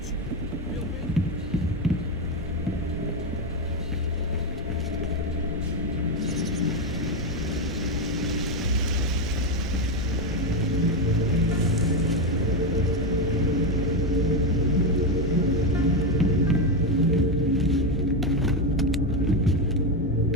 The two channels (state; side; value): normal; both; correlation 0.09